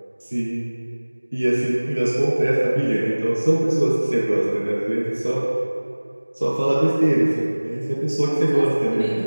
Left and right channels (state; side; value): inverted; both; correlation -1.00